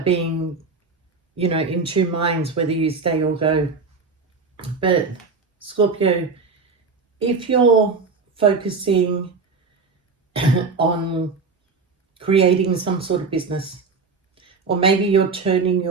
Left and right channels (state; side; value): quieter; left; 4.6 dB